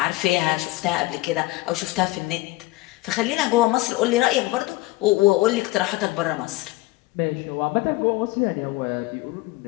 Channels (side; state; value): right; quieter; 20.2 dB